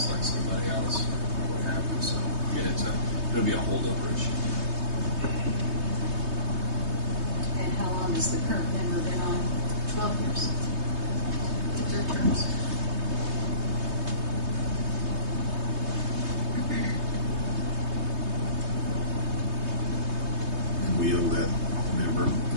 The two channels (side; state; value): left; late; 3.2 ms